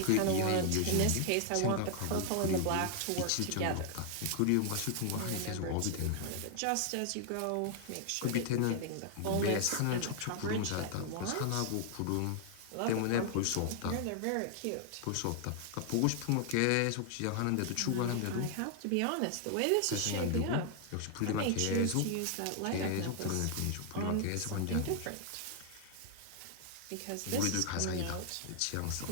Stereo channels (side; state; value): both; different; correlation 0.00